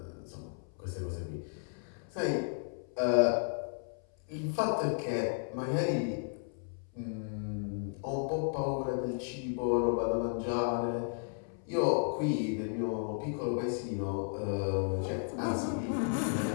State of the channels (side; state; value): right; silent; 55 dB below the other